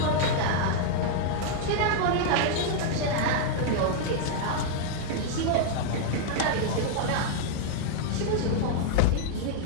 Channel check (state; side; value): different; both; correlation -0.01